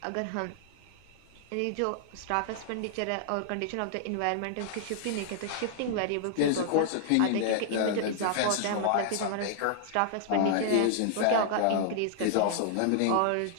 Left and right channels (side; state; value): both; different; correlation -0.01